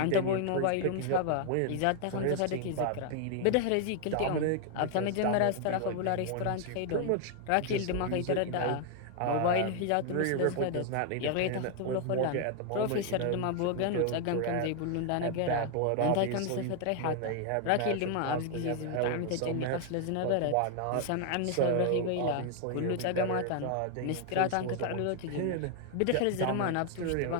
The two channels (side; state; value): both; different; correlation 0.00